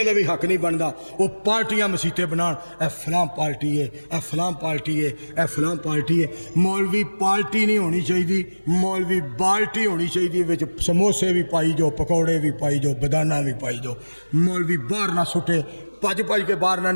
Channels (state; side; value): inverted; both; correlation -1.00